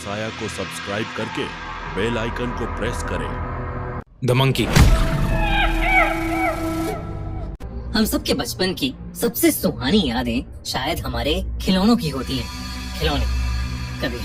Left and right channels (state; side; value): identical; both; correlation 1.00